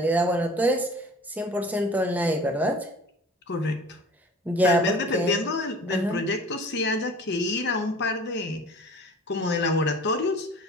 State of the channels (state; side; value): normal; both; correlation 0.44